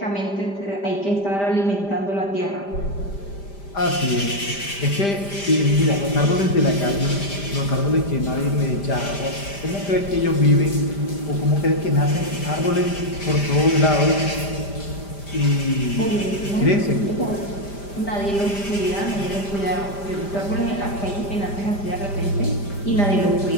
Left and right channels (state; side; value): late; right; 5.0 ms